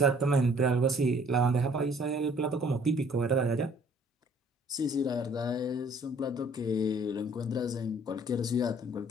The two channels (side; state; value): both; normal; correlation 0.58